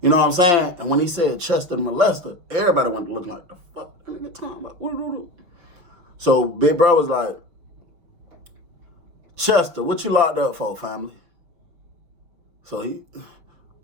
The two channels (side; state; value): left; late; 6.0 ms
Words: You know what I'm saying? And when he said Chester the molester, everybody went to looking like, the fuck that nigga talking about? So big bro was like, Chester, what you locked up for, family? So